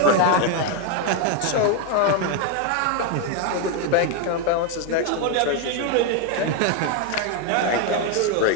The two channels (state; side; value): different; both; correlation 0.01